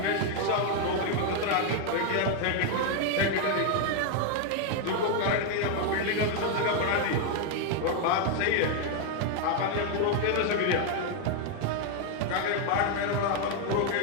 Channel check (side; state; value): both; different; correlation 0.01